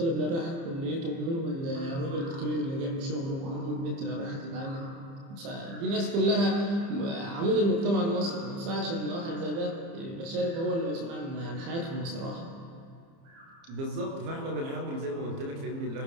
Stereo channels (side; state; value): left; late; 30 ms